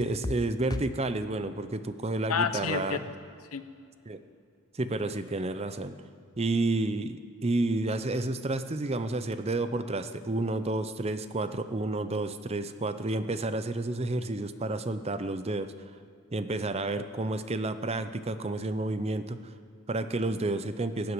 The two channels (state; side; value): normal; both; correlation 0.57